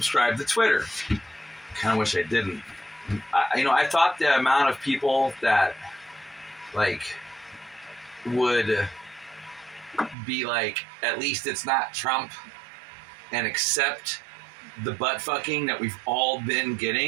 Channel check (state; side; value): drops out; left; at 10.2 s